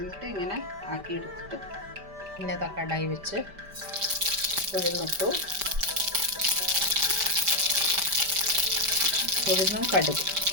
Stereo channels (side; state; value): left; late; 5.1 ms